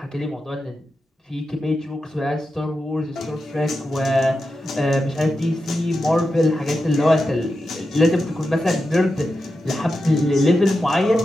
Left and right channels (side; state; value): both; normal; correlation 0.90